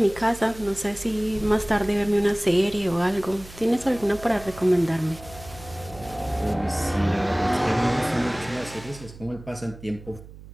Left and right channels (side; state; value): right; noise; hum, 17 dB below the sound